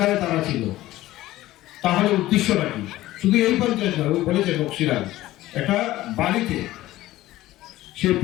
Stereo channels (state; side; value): quieter; right; 16.1 dB